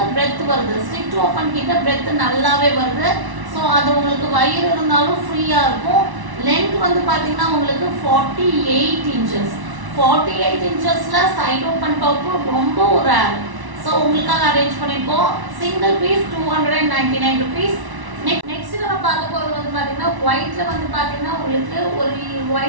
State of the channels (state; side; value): late; left; 1.1 ms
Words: பிரெத் வருது. ஸ்லிட் ஓப்பன் கிட்ட பிரெத் நல்லாவே வருது. ஸோ அது உங்களுக்கு வயிறு இருந்தாலும் ஃப்ரீயாக இருக்கும். லென்த் வந்து பார்த்தீங்கன்னா உங்களுக்கு 48 inches. 48 inchesல சைடு ஓப்பன் டாப் ரொம்ப ஒரு ரேர். ஸோ உங்களுக்காக அரேஞ்ச் பண்ணியிருக்கோம். Single piece 299 rupees. நெக்ஸ்ட் நம்ம பார்க்க போகிறது வந்து பார்த்தீங்கன்னா ஒயிட்ல வந்து பார்த்தீங்கன்னா உங்களுக்கு ஒரு